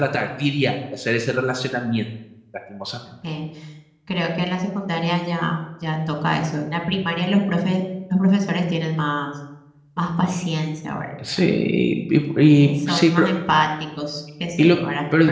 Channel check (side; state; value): both; identical; correlation 1.00